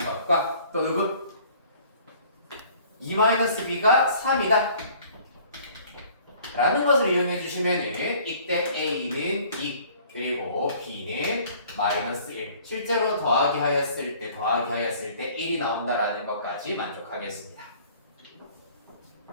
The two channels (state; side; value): inverted; both; correlation -0.53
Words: 것과 또 누구? 2-b가 3이다 라는 것을 이용해 주시면 이때 a는 2 그리고 b는 마이너스 1 실제로 더하기 하였을 때 1이 나온다라는 것까지 만족하겠습니다.